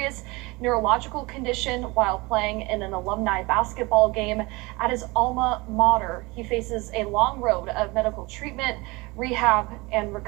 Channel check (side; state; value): left; quieter; 24.1 dB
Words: neurological condition while playing in an alumni basketball game at his alma mater. He faces a long road of medical treatment, rehab, and